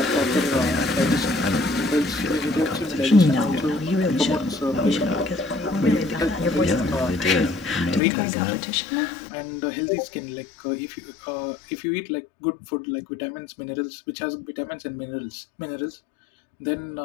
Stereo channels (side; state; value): right; drops out; at 8.0 s